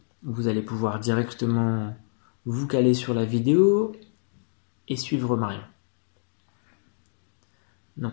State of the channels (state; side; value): silent; right; digital silence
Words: Vous allez pouvoir directement vous caler sur la vidéo et suivre Marion.